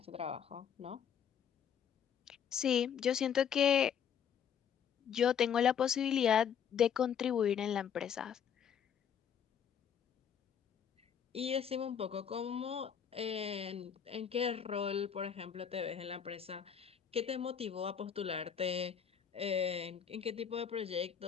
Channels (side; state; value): right; quieter; 8.0 dB